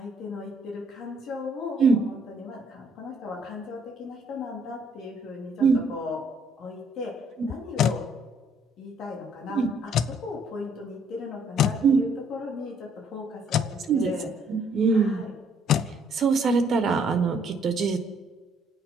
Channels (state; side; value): normal; both; correlation 0.65